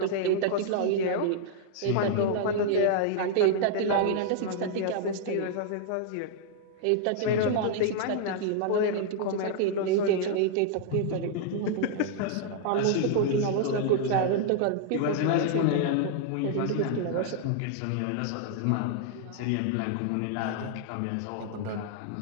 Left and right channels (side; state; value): both; different; correlation -0.01